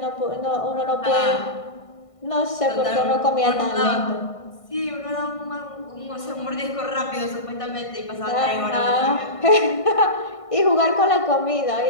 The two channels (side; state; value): right; late; 1.5 ms